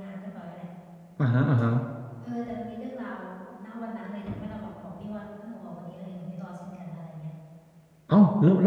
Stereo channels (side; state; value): both; identical; correlation 1.00